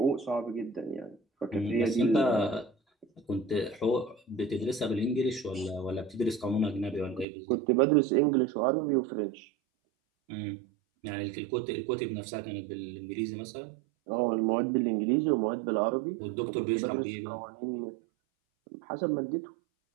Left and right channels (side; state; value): left; drops out; at 7.2 s